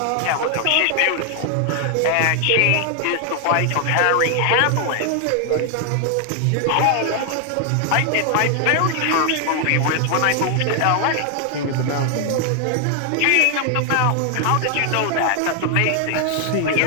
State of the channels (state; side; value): different; both; correlation 0.00